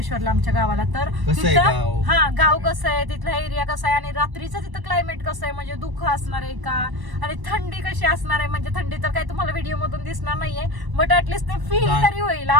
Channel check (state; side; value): late; left; 1.0 ms